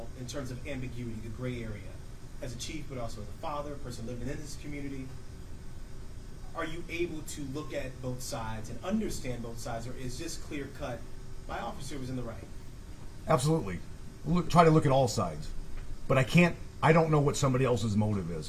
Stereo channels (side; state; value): both; identical; correlation 1.00